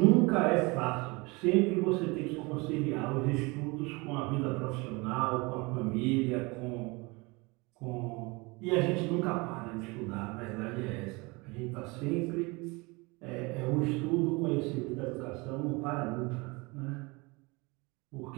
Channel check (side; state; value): left; quieter; 26.1 dB